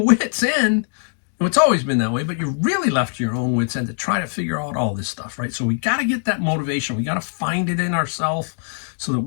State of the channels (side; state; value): right; silent; digital silence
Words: wits' end. It's always been that way, but you're really left to your own wits' end to try to figure out all this stuff, right? So we got to get that motivation. We got to find it in ourselves so that